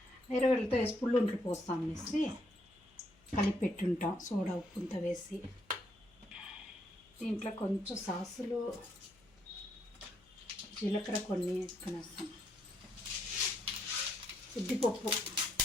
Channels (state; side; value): noise; left; hum, 29 dB below the sound